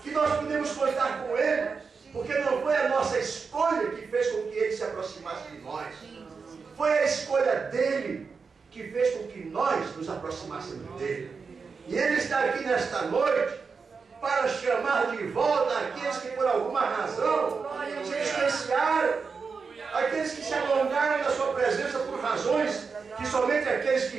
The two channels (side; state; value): left; quieter; 5.1 dB